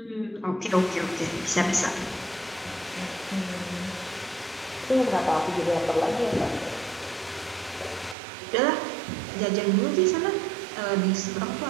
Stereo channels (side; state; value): left; drops out; at 8.2 s